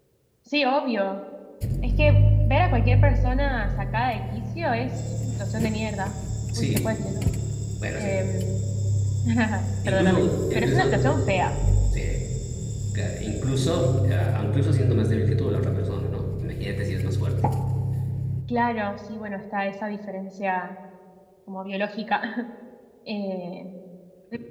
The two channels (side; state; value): both; identical; correlation 1.00